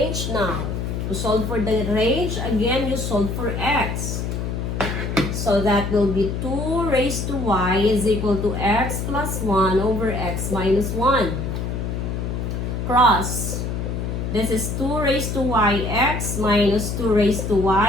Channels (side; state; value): left; noise; hum, 3 dB below the sound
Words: now. To solve for the range, again, you solve for x. So that will be 2 raised to y is equal to x plus 1 over x minus 1. Cross. This is 2 raised to y x minus 2 raised to